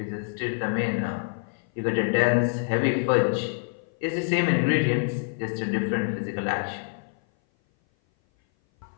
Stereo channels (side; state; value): right; silent; 57 dB below the other